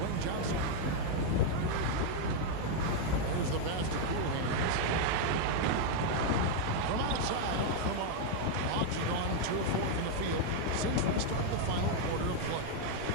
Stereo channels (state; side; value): different; both; correlation 0.00